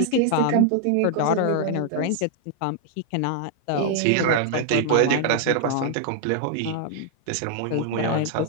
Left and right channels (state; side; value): different; both; correlation 0.00